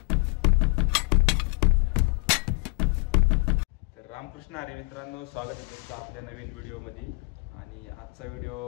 तर रामकृष्ण हरी मित्रांनो, स्वागत आहे तुमचं आपल्या नवीन व्हिडिओमध्ये. आणि आजचा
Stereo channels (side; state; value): right; quieter; 30.2 dB